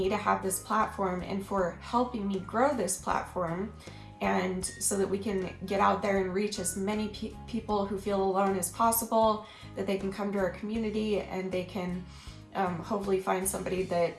to have this platform and for helping me grow this platform, and so that we can get out there and reach as many people who feel alone as possible, that they can come to our community and they can hopefully find somebody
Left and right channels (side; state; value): both; identical; correlation 1.00